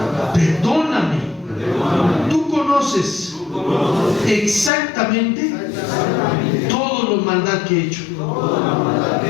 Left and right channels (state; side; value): drops out; right; at 4.7 s